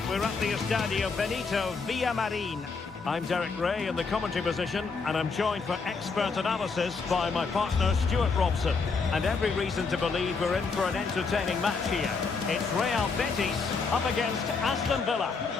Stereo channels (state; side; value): quieter; right; 4.7 dB